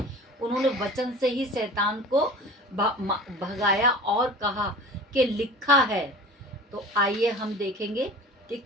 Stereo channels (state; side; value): normal; both; correlation 0.39